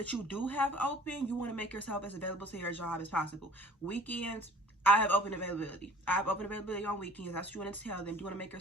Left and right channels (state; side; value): normal; both; correlation 0.51